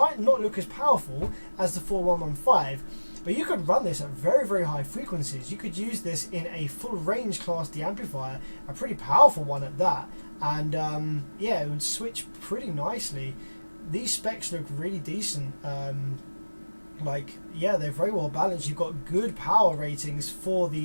not look as powerful as the 4115, but you could run this at very, very high frequencies. You could use this in a full range class D amplifier, a pretty powerful one at that, and yeah, it would switch pretty nicely. These specs look really decent. Yeah, they're very well balanced. You've got good power ratings for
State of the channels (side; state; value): both; inverted; correlation -1.00